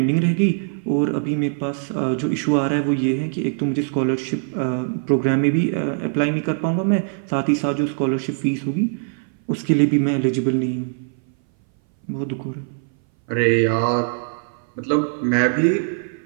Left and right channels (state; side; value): silent; left; 60 dB below the other